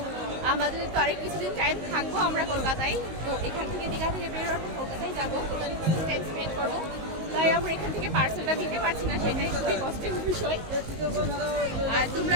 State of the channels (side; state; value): left; late; 19 ms